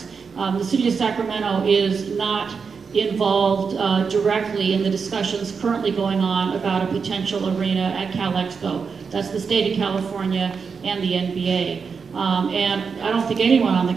The city of Sacramento is not involved directly in the discussions currently going on about a potential arena at Cal Expo. That's the state of California and the NBA. And I don't think anyone on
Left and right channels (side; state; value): left; quieter; 5.6 dB